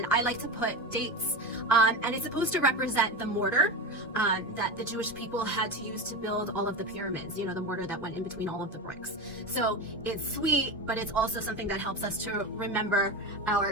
I like to put dates. And it's supposed to represent the mortar that the Jewish people had to use to build all of the pyramids, you know, the mortar that went in between all of the bricks. So it's sweet, but it's also something that helps us to remember our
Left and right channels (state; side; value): normal; both; correlation 0.22